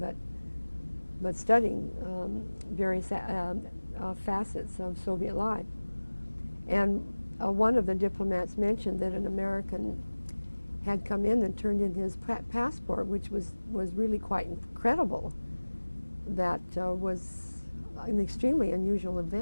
but studying various facets of Soviet life. And one of the diplomats mentioned that an American had come in and turned in his passport, which was really quite incredible. That was an extremely unusual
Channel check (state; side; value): inverted; both; correlation -1.00